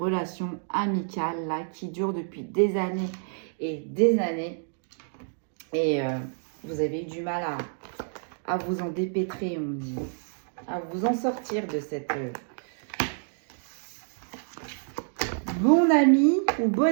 amicale là qui dure depuis des années et des années. Et vous avez eu du mal à vous en dépêtrer, on dit. À vous en sortir de bon ami ou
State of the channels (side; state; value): left; silent; digital silence